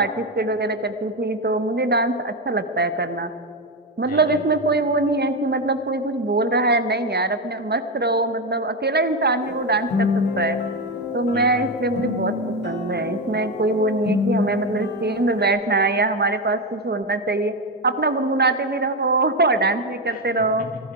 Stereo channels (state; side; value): normal; both; correlation 0.11